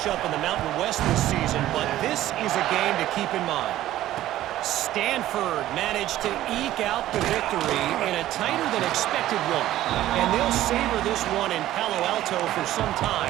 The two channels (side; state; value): left; quieter; 14.0 dB